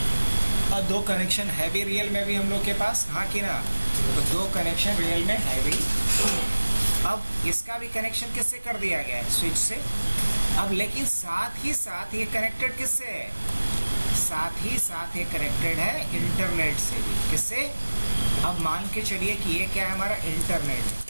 और 2 कनेक्शन है भी रियल में भी हम लोग के पास, हाँ कि ना? तो 2 कनेक्शन रियल में है भी। अब इसका भी कनेक्शन किससे कर दिया गया है? स्विच से। अब लेकिन साथ ही साथ ये कनेक्टेड किससे है? साथ ही साथ ये कनेक्टेड है इंटरनेट से भी। किससे? अब मान के चलिए कि ये क्या है, हमारा इंटरनेट है।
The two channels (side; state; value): both; inverted; correlation -1.00